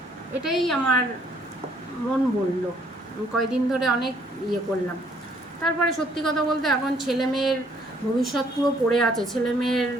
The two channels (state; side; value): normal; both; correlation 0.64